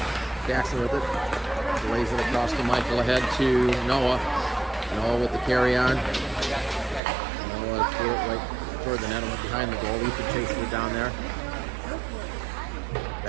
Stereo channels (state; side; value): drops out; left; at 7.0 s